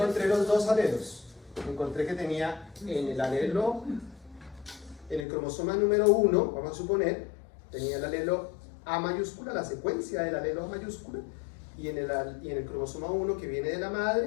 los dos alelos. Encontré que tenía en el alelo, en el cromosoma número 1, vamos a suponer, tenía el alelo A mayúscula, la secuencia del alelo A mayúscula, y en el cromosoma 1 que viene de la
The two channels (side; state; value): right; drops out; at 5.2 s